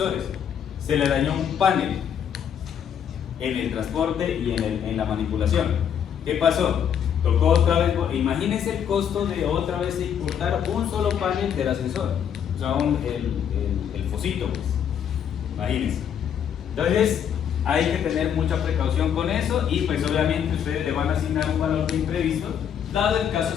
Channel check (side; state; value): right; quieter; 8.6 dB